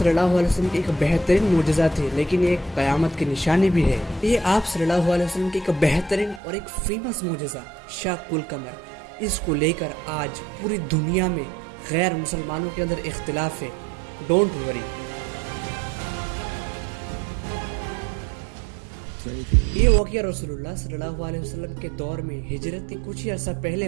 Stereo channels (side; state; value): left; drops out; at 6.4 s